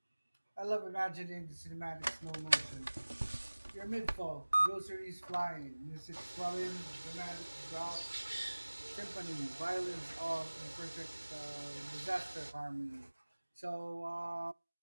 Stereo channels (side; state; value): both; inverted; correlation -1.00